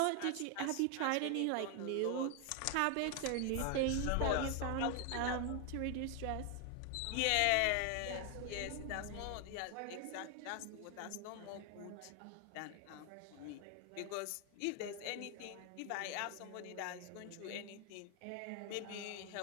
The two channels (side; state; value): both; different; correlation 0.00